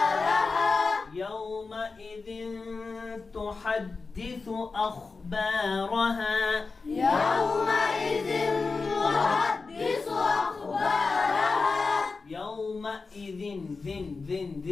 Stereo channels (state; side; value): quieter; right; 4.3 dB